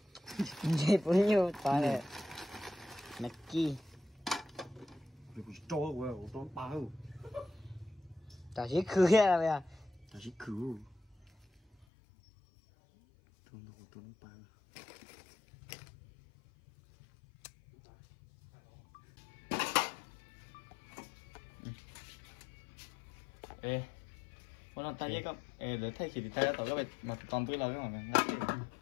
Chị cũng như ta này. Nè chi. Rồi cho của tôi bao. Ta chỉ khử ra bây giờ. Ta chỉ khử. Tôi bao. Ê, muốn làm tay với con. Ê, để thay thì tay tao các bạn mà còn với lâu cái mà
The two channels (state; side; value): drops out; right; at 11.9 s